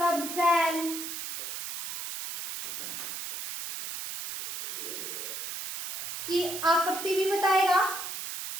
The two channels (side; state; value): right; noise; hiss, 6 dB below the sound